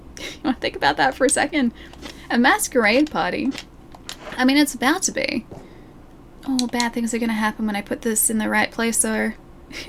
You want to think about that for a second? A masquerade party. I mean, it's about to be. Oh, bad things are gonna happen when I put this in the right place, though.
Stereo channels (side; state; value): both; identical; correlation 1.00